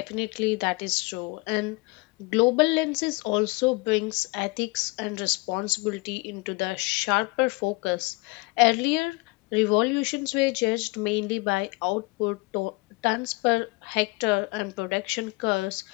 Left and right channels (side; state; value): right; quieter; 25.9 dB